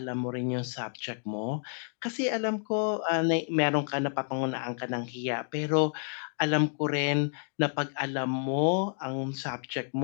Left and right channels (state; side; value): silent; right; digital silence